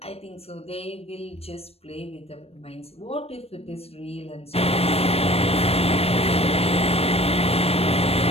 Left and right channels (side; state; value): right; late; 0.29 ms